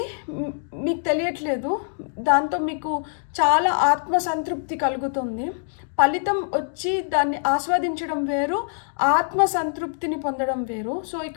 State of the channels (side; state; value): right; silent; digital silence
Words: మీకు తెలియట్లేదు, దాంతో మీకు చాలా ఆత్మసంతృప్తి కలుగుతుంది. ఫలితం వచ్చి దాన్ని ఆస్వాదించడం వేరు, ఆత్మ సంతృప్తిని పొందడం వేరు. సో